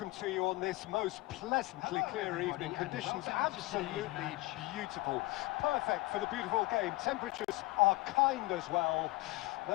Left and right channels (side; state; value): right; quieter; 21.1 dB